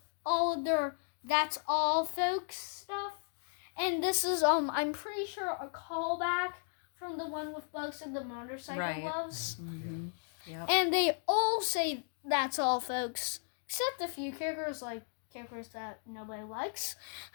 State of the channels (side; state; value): right; silent; digital silence